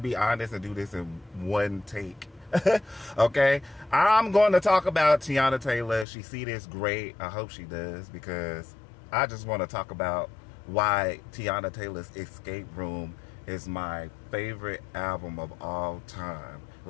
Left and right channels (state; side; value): drops out; right; at 6.1 s